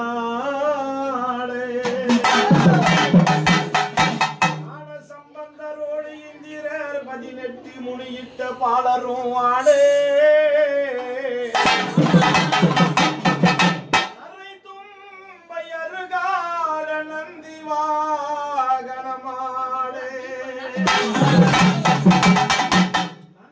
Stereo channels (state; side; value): identical; both; correlation 1.00